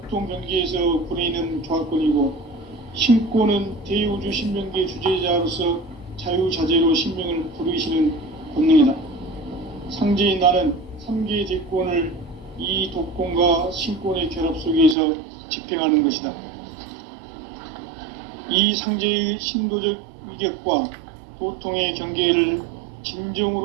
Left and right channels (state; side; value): drops out; left; at 15.0 s